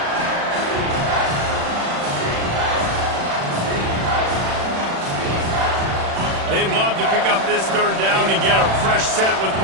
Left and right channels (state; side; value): late; left; 36 ms